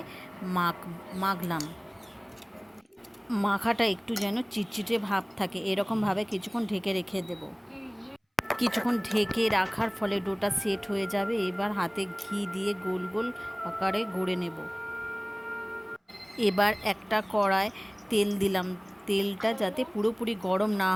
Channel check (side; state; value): both; identical; correlation 1.00